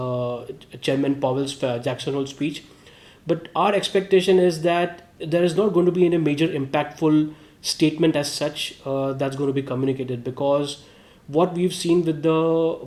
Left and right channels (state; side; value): identical; both; correlation 1.00